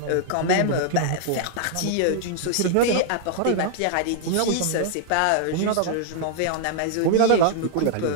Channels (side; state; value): both; different; correlation -0.01